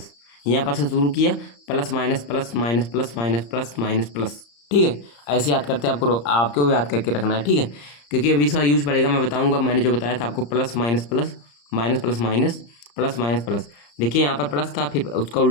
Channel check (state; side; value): late; right; 34 ms